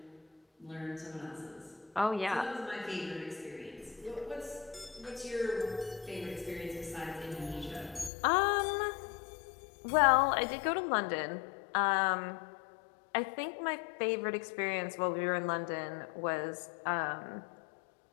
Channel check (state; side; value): drops out; right; at 8.1 s